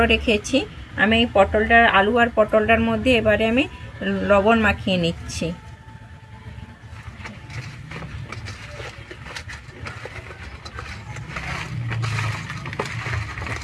রেখেছি। আমি এই আলু আর পটলটার মধ্যে এবারে আমি লবণ মাখিয়ে নিচ্ছি।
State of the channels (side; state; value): both; identical; correlation 1.00